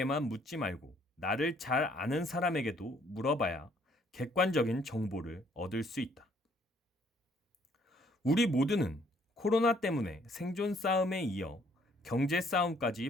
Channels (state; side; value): normal; both; correlation 0.64